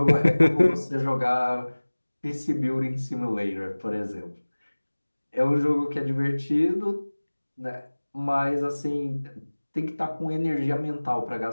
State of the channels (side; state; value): both; inverted; correlation -1.00